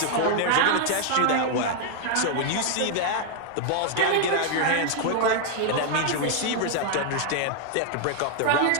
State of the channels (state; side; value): different; both; correlation 0.00